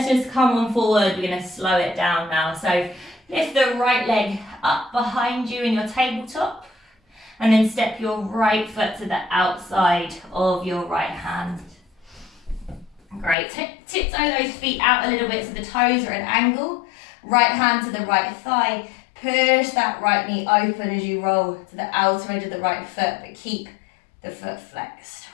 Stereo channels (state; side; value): drops out; right; at 13.4 s